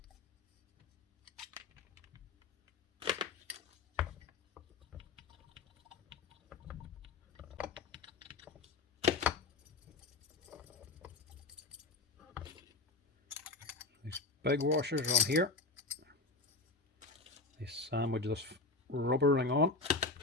These big washers are on here. They sandwich this rubber ring on.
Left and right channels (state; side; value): quieter; right; 3.6 dB